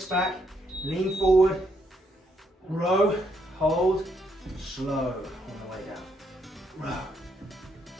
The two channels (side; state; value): both; normal; correlation 0.74